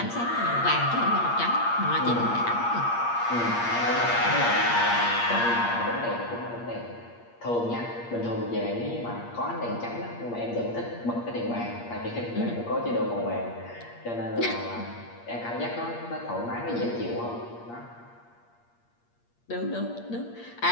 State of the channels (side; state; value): right; late; 8.6 ms